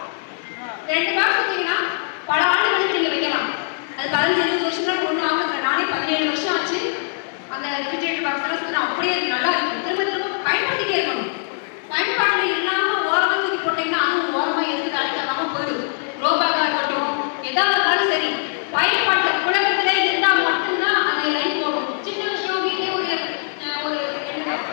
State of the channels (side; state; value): right; silent; 65 dB below the other